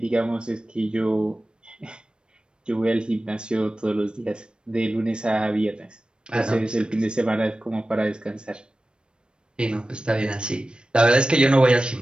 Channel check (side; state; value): left; late; 0.054 ms